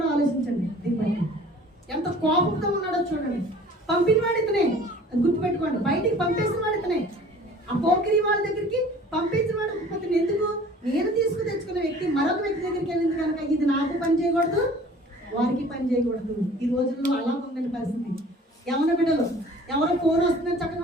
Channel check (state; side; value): normal; both; correlation 0.48